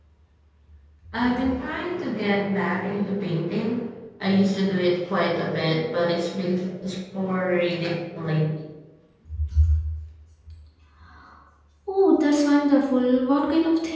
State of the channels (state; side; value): identical; both; correlation 1.00